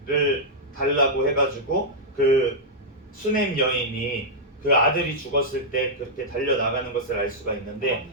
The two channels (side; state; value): both; normal; correlation -0.07